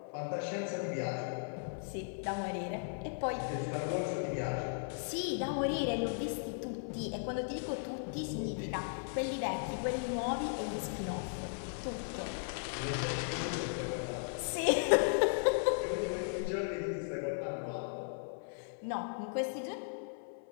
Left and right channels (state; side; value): silent; right; 53 dB below the other